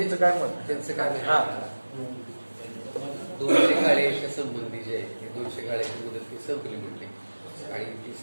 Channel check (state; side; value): inverted; both; correlation -1.00